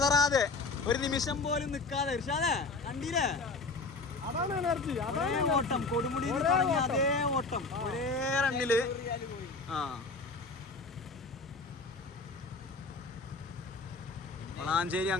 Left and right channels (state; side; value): quieter; right; 3.8 dB